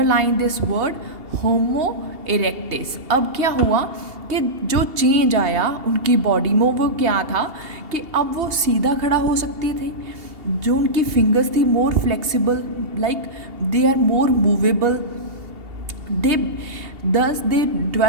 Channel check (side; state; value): left; late; 2.8 ms